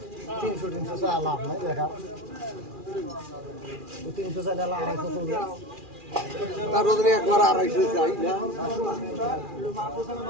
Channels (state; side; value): late; left; 2.4 ms